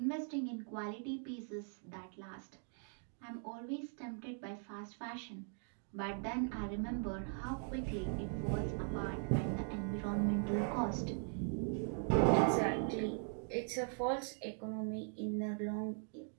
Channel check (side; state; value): left; silent; 51 dB below the other